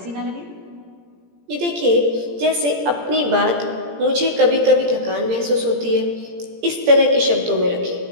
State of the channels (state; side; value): late; left; 17 ms